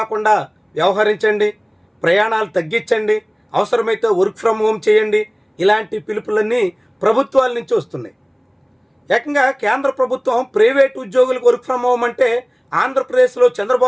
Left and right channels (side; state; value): both; identical; correlation 1.00